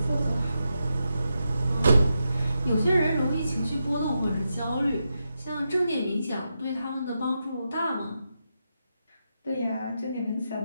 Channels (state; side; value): inverted; both; correlation -0.86